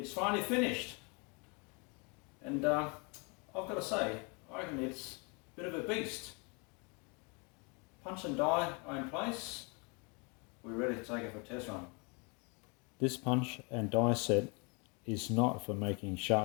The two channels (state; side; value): quieter; right; 32.2 dB